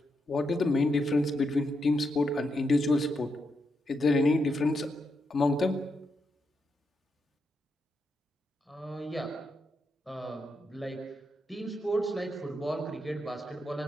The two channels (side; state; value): both; normal; correlation 0.83